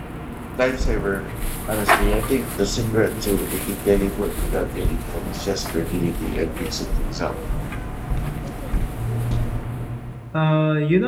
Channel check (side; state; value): both; identical; correlation 1.00